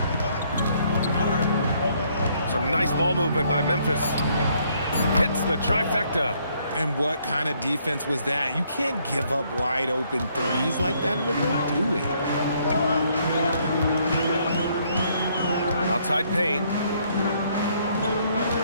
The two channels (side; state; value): both; inverted; correlation -0.68